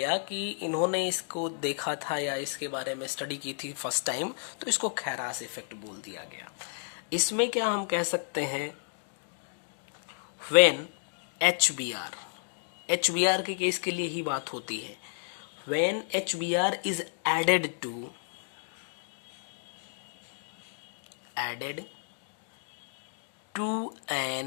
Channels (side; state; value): right; silent; digital silence